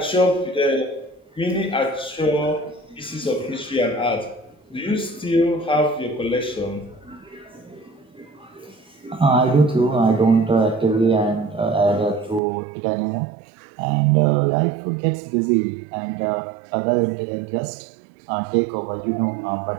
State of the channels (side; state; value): left; drops out; at 12.4 s